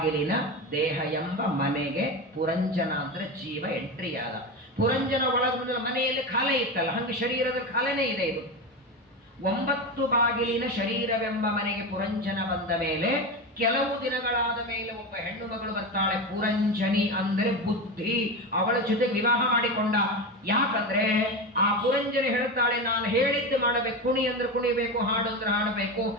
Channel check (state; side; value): normal; both; correlation 0.20